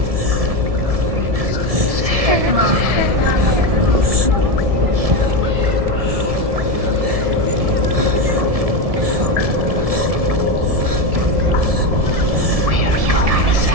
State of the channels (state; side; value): late; left; 1.7 ms